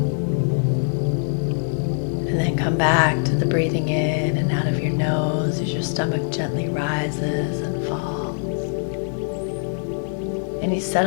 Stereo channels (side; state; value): right; silent; digital silence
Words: And then come back to the breathing in and out of your nose as your stomach gently rises and falls. And you